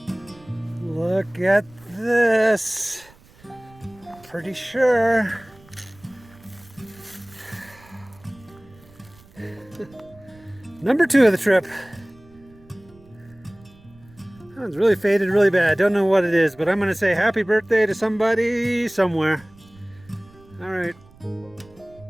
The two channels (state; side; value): noise; right; rumble, 26 dB below the sound